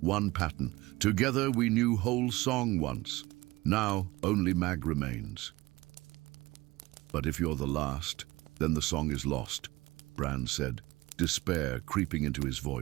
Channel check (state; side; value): quieter; left; 20.3 dB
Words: one pattern. Together we knew whole song once. Now only Mag remains. But if you're the last, then the song is lost, Bran said, despair creeping into his